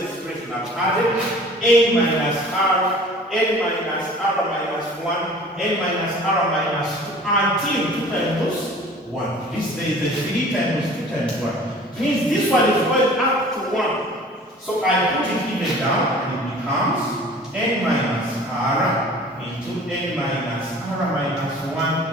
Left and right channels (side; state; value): both; normal; correlation 0.46